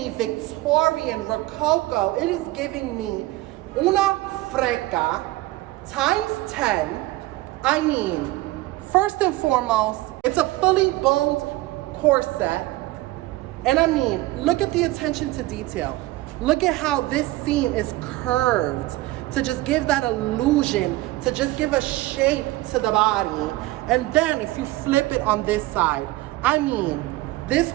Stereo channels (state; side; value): quieter; left; 18.6 dB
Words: Victorian, Rococo, it is giving me una freca times 10. I mean, first and foremost, it's a fully boned corset. And I mean, look at the attention to detail. Look at how this seam is curved to just give that illusion, to just give a shape to the body. And then if you flip it on this side, I mean, this